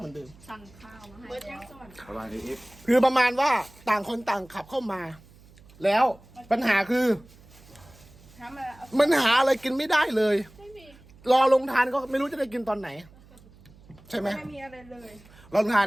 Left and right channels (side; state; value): right; noise; hum, 25 dB below the sound